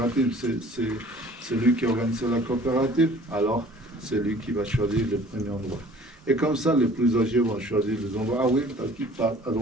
c'est lui qui a organisé la coopérative, alors c'est lui qui va choisir le premier endroit. Et comme ça, les plus âgés vont choisir les endroits. Ah oui, à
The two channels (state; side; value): normal; both; correlation 0.50